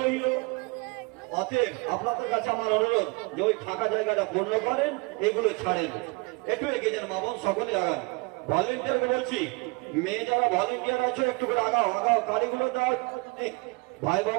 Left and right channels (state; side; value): quieter; left; 28.4 dB